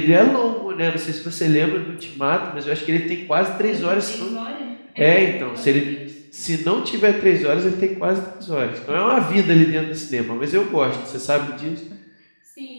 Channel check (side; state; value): both; inverted; correlation -1.00